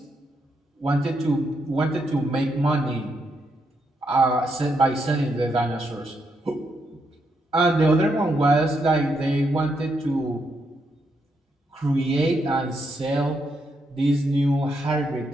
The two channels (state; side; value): normal; both; correlation 0.79